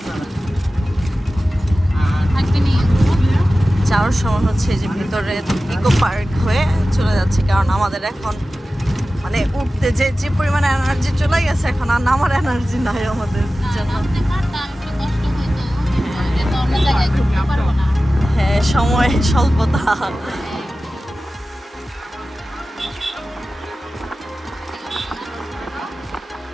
যাওয়ার সময় হচ্ছে যে ভিতরে ইকো পার্ক হয়ে চলে যাচ্ছে, কারণ আমাদের এখন মানে উঠতে যে পরিমাণে এনার্জি চলে গেছে, এখন আর নামার এনার্জি নাই আমাদের জন্য। হ্যাঁ, সময় স্বল্পতা।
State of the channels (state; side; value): normal; both; correlation 0.95